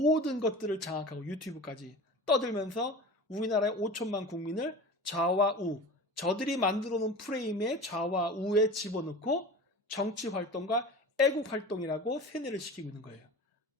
것들을 장악하고 유튜브까지 떠들면서 우리나라의 5천만 국민을 좌와 우, 저들이 만들어 놓은 프레임에 좌와 우에 집어넣고 정치 활동과 애국 활동이라고 세뇌를 시키고 있는 거예요.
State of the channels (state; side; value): normal; both; correlation 0.35